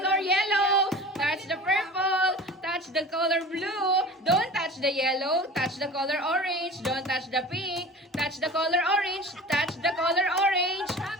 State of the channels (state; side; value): normal; both; correlation 0.38